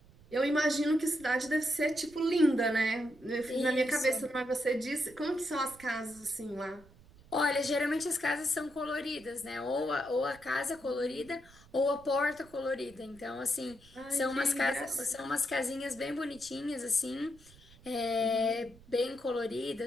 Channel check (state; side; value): noise; right; rumble, 24 dB below the sound